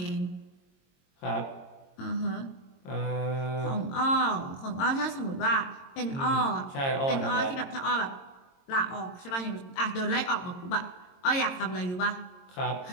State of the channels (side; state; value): right; late; 22 ms